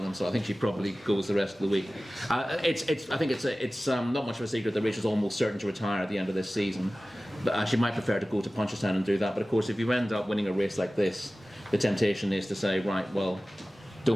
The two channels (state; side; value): normal; both; correlation 0.97